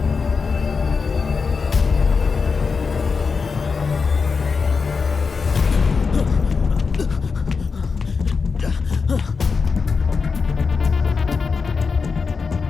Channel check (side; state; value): right; quieter; 5.0 dB